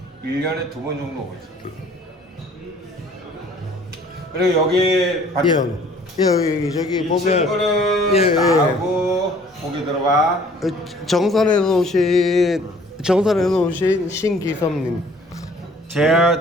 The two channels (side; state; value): both; normal; correlation 0.55